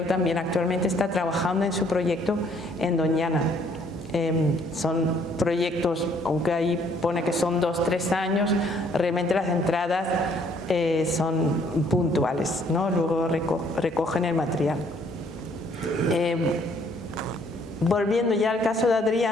también actualmente está trabajando en su proyecto en Doñana. Son proyectos, aunque ahí pone que son 2-3 años, realmente las entradas son puntuales, ¿no? Luego recogen el material. Volviendo ya al caso de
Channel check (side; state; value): both; normal; correlation 0.63